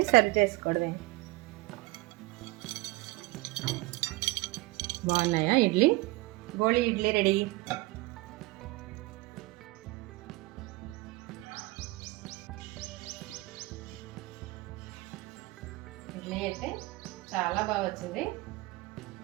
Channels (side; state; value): left; quieter; 21.5 dB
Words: సర్వ్ చేసుకోవడమే. బాగున్నాయా ఇడ్లీ? గోళీ ఇడ్లీ రెడీ. ఇడ్లీ అయితే చాలా బాగా వచ్చింది.